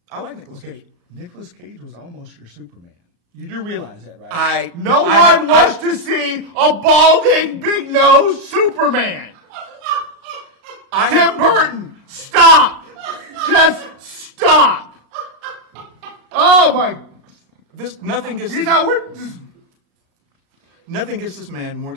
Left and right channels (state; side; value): late; left; 36 ms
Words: I like Nicolas Cage. Nicolas Cage was almost your Superman. You do realize that, right? No one wants to see a balding, big-nosed Superman. Tim Burton, stop! Just stop! Oh my! Nothing gets this man more